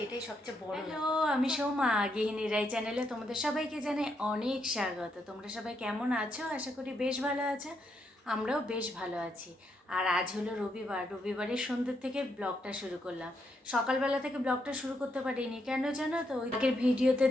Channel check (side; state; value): both; normal; correlation 0.78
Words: এটাই সবচেয়ে বড়। হ্যালো, আমি সৌমা, গৃহিণী রাই চ্যানেলে তোমাদের সবাইকে জানাই অনেক স্বাগত। তোমরা সবাই কেমন আছো? আশা করি বেশ ভালো আছো। আমরাও বেশ ভালো আছি। আর আজ হলো রবিবার, রবিবারের সন্ধ্যে থেকে ব্লগটা শুরু করলাম। সকালবেলা থেকে ব্লগটা শুরু করতে পারিনি, কেন জানো তো? ওই আগের ভিডিওতে